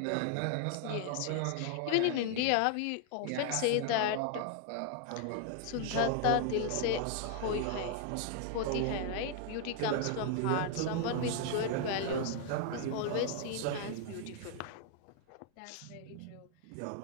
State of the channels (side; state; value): both; different; correlation 0.00